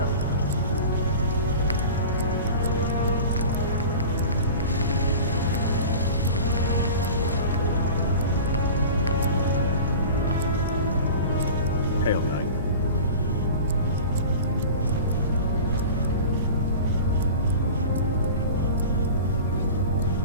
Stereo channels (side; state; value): both; inverted; correlation -0.36